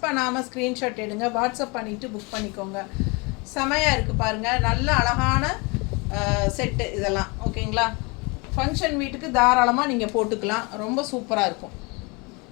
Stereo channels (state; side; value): quieter; right; 28.8 dB